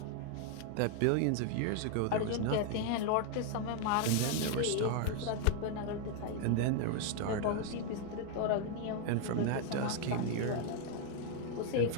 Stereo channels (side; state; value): both; different; correlation 0.00